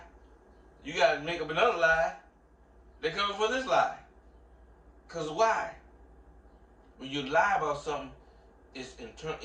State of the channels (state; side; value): identical; both; correlation 1.00